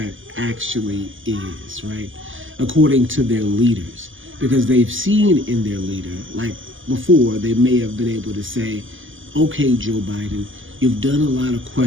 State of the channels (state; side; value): late; left; 0.58 ms